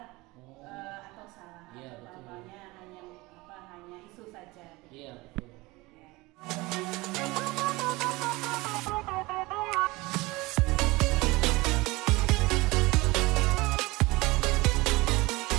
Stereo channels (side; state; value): left; quieter; 22.2 dB